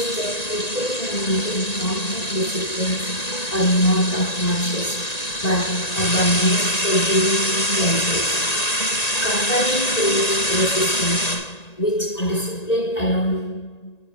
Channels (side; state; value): right; late; 1.9 ms